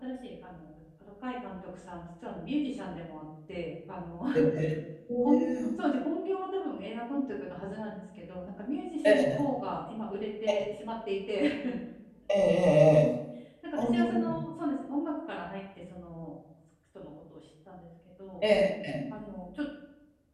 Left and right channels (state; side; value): identical; both; correlation 1.00